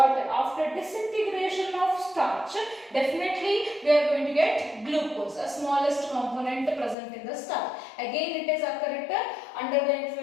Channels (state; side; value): drops out; right; at 7.0 s